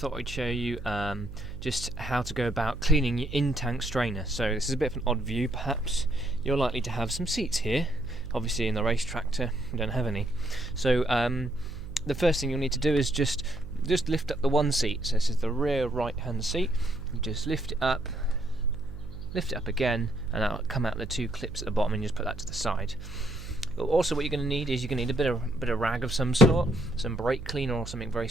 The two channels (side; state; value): right; noise; hum, 12 dB below the sound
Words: I'd show you just how to go about cleaning your in-tank strainer. So this is a bit of an odd view perhaps. You're likely to have some seats here. Obviously in the Racetractor we don't have any. So the first thing you'll need to do is just lift up the one seat. So this is the rear right hand seat. You just lift it up again, and that'll come out the two clips at the bottom, and you just put that to the side. Also, what you're going to need is a bit of rag of some sort, some brake cleaner or something very